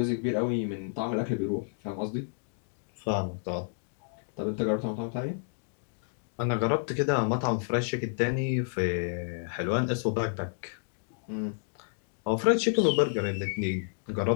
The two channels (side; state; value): right; silent; digital silence